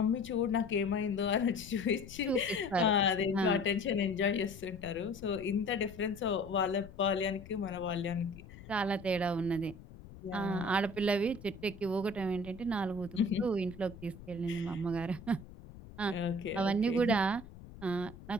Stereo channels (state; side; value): noise; left; rumble, 17 dB below the sound